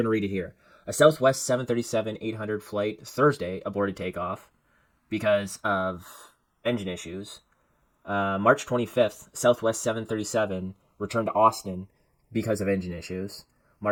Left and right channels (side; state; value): both; identical; correlation 1.00